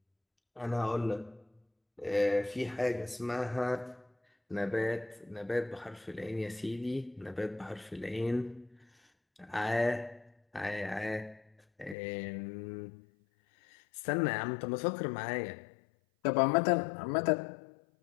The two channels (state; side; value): drops out; right; at 12.0 s